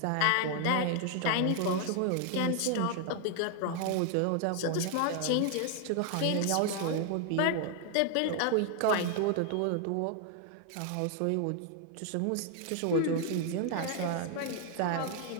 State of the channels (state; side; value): different; both; correlation 0.00